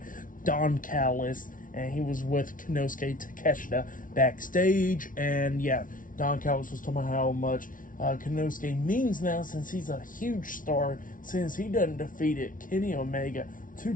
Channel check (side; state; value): right; late; 0.38 ms